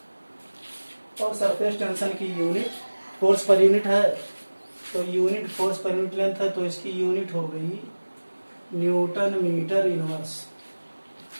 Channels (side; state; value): both; inverted; correlation -1.00